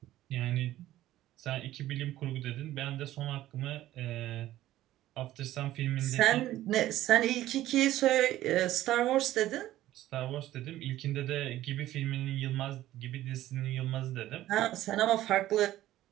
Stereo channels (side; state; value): left; quieter; 14.4 dB